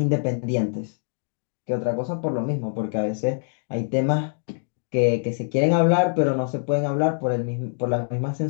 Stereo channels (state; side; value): silent; right; digital silence